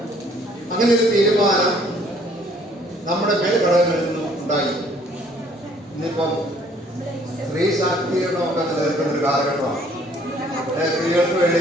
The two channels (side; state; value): both; normal; correlation 0.60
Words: അങ്ങനെ ഒരു തീരുമാനം നമ്മുടെ മേൽഘടകങ്ങളിൽ നിന്നും ഉണ്ടായി. ഇന്നിപ്പം സ്ത്രീ ശാക്തീകരണമൊക്കെ നിലനിൽക്കുന്ന ഒരു കാലഘട്ടമാണ്. സ്ത്രീകൾക്ക് വേണ്ടി